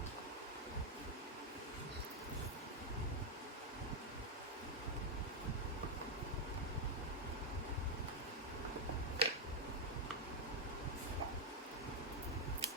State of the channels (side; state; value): both; normal; correlation 0.01